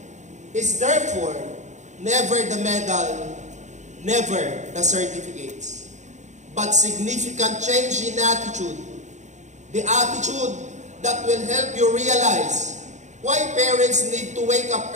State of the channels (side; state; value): left; late; 0.34 ms